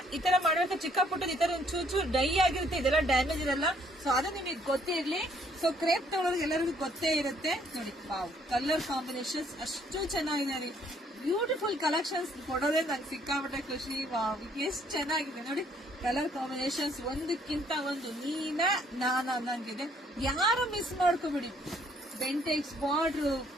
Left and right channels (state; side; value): normal; both; correlation 0.65